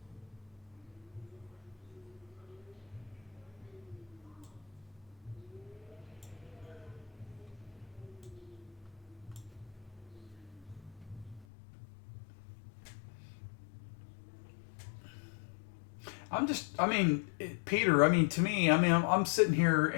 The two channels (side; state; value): right; drops out; at 11.5 s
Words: Peter, to me, I'm sitting here